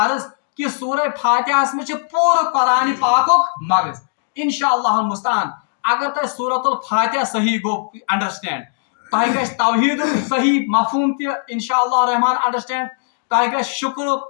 عرض کہ سورہ فاتحہس مز پورٕ قرآن پاکک مغز. انشاءاللہ المستعان اگر تہ سورۃ الفاتحہ صحیح گو انڈرسٹینڈ تہ گژھِ توحید صحیح مفہوم تہ انشاءاللہ الرحمن انڈرسٹینڈ تہ گژھِ شکرک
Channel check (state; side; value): silent; right; digital silence